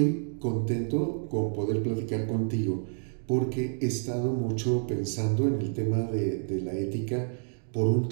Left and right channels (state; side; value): silent; left; digital silence